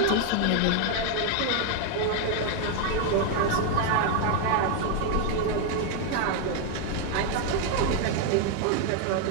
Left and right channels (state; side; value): different; both; correlation 0.01